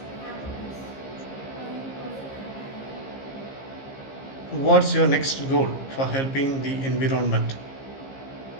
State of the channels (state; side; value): late; right; 15 ms